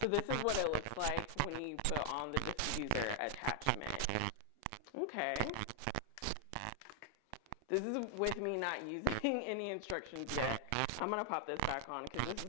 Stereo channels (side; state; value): both; different; correlation 0.00